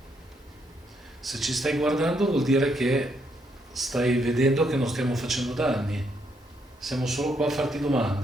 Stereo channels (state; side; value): normal; both; correlation 0.75